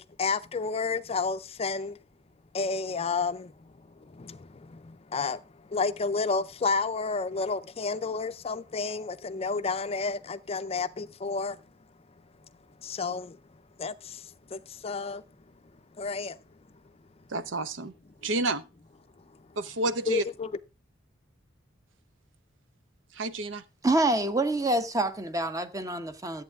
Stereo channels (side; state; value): both; normal; correlation 0.13